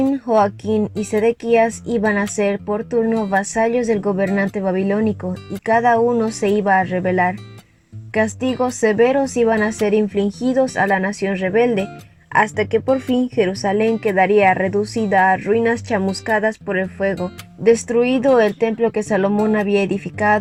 Joaquín y Sedequías iban a ser por turno vasallos del gobernante babilónico y cada uno se iba a rebelar. Castigos severos iban a ser infligidos a la nación rebelde, hasta que por fin Jerusalén quedaría reducida a ruinas chamuscadas por el fuego, destruido el templo que Salomón había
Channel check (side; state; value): both; identical; correlation 1.00